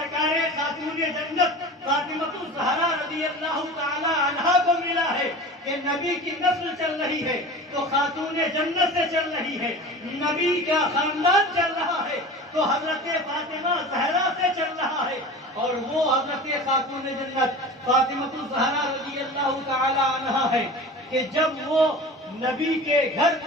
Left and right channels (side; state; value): both; normal; correlation 0.35